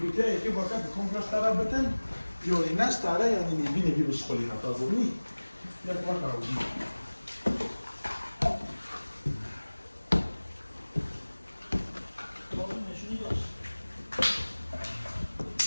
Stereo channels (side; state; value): both; inverted; correlation -1.00